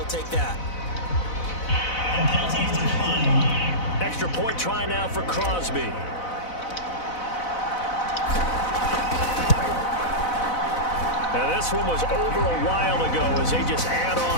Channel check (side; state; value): right; late; 4.0 ms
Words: take that. Extra point try now for Crosby. And this one was over a while ago as they just add